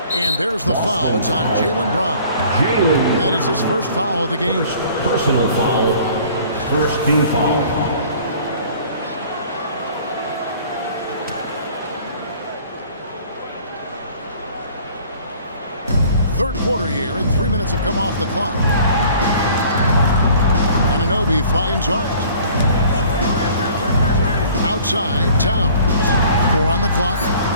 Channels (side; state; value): both; inverted; correlation -0.52